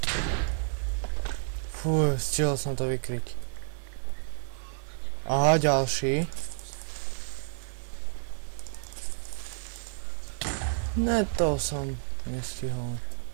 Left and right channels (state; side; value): silent; left; digital silence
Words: Fú, stihol som to vykryť. Aha, ďalší. Ne, to som nestihol.